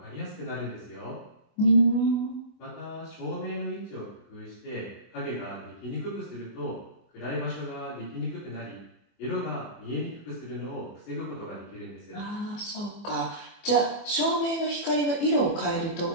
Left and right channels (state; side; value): late; right; 24 ms